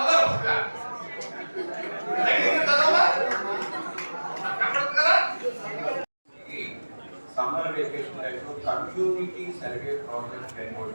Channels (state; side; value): inverted; both; correlation -1.00